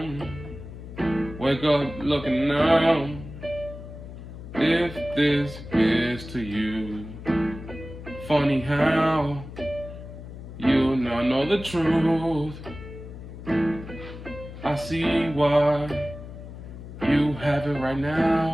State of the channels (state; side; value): noise; left; hum, 12 dB below the sound